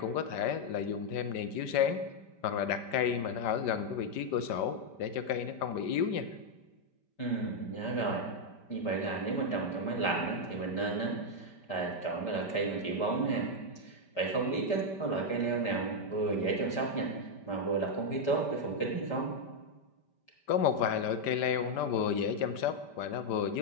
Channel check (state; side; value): late; right; 5.1 ms